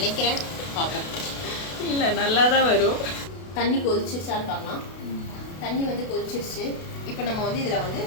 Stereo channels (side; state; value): right; late; 32 ms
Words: பார்ப்போம். இல்லை, நல்லா தான் வரும். தண்ணி கொதிச்சிருச்சான்னு பார்க்கலாம். தண்ணி வந்து கொதிச்சிருச்சு. இப்போ நம்ம வந்து இதில் வந்து